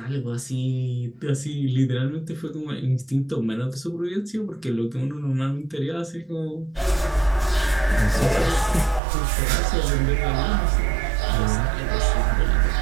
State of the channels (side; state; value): left; drops out; at 9.0 s